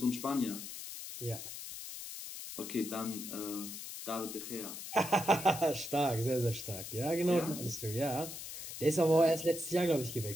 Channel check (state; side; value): noise; left; hiss, 9 dB below the sound